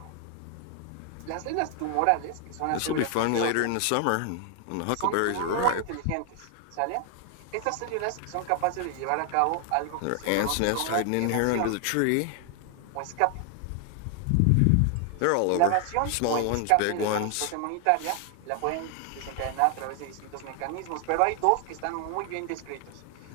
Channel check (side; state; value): both; different; correlation 0.00